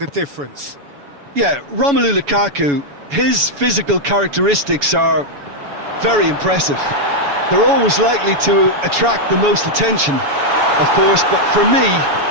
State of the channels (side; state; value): left; late; 7.1 ms